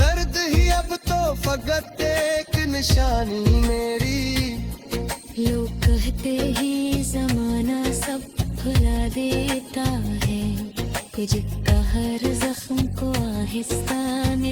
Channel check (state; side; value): identical; both; correlation 1.00